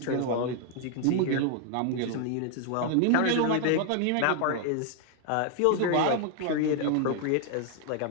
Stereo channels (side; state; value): both; different; correlation 0.00